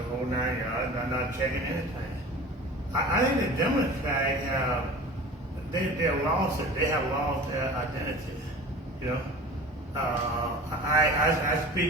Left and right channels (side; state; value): both; normal; correlation 0.38